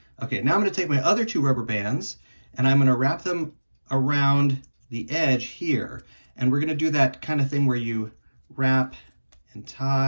Okay, now I'm going to take my other 2 rubber bands and I'm going to wrap them around the edge here. And we're going to do that kind of thing where you wrap and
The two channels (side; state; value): both; inverted; correlation -1.00